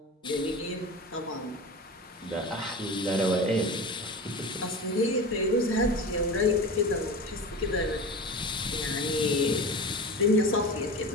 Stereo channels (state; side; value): normal; both; correlation 0.30